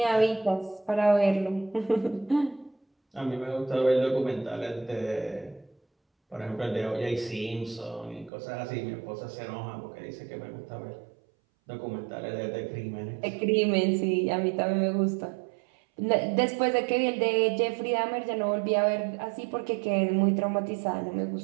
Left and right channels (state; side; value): drops out; left; at 8.3 s